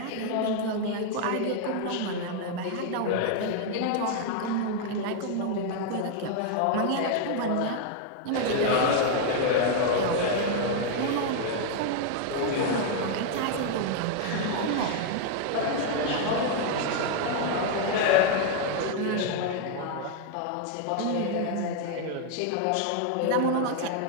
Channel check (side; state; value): both; different; correlation 0.00